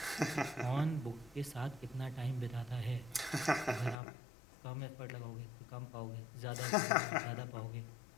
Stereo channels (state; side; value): drops out; right; at 4.0 s